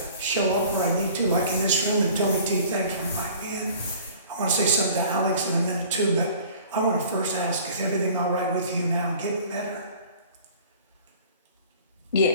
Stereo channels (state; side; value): inverted; both; correlation -0.48